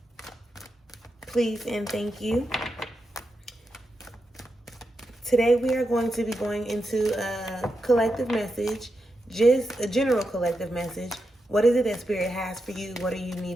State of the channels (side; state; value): both; normal; correlation 0.87